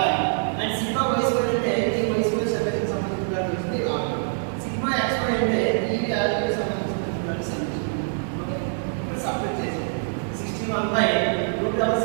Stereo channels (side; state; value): left; silent; digital silence